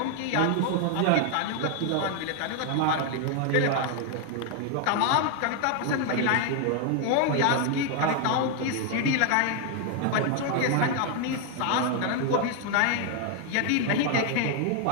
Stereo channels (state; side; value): different; both; correlation 0.00